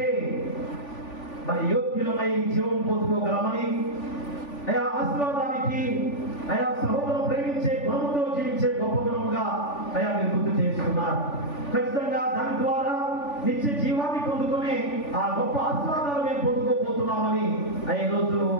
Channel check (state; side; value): late; right; 3.4 ms